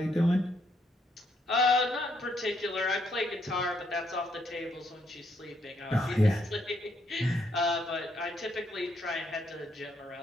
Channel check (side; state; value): both; normal; correlation 0.74